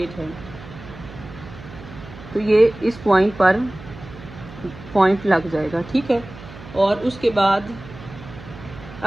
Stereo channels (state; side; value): noise; right; hum, 16 dB below the sound